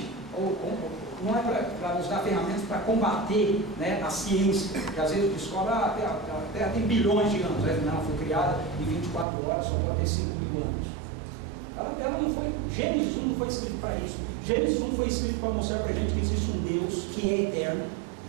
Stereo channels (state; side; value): drops out; left; at 9.2 s